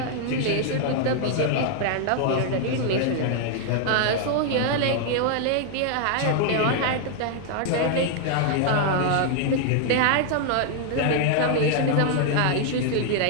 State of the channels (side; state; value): both; different; correlation 0.00